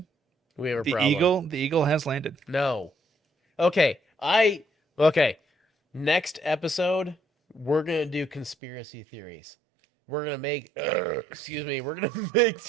We have a the problem. eagle has landed. No. Okay. Next episode, we're gonna do conspiracy theories. We're gonna make we're gonna make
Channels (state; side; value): drops out; left; at 8.6 s